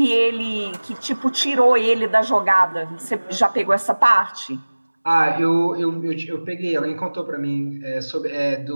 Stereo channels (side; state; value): both; inverted; correlation -1.00